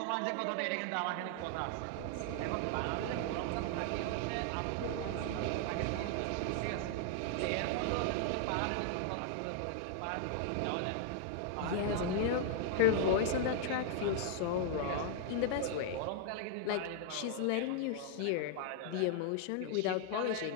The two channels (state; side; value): different; both; correlation -0.01